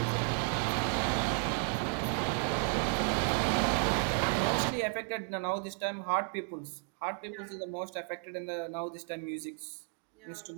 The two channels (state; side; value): quieter; left; 39.9 dB